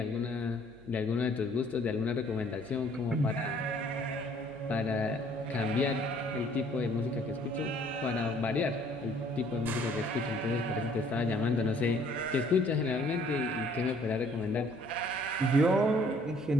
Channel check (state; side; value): noise; right; hum, 25 dB below the sound